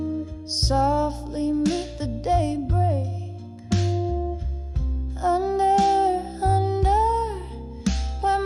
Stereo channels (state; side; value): identical; both; correlation 1.00